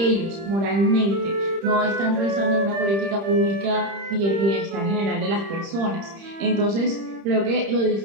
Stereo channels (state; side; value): late; left; 30 ms